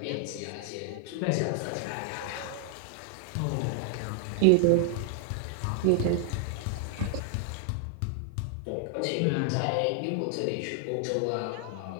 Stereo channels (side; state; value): both; different; correlation 0.00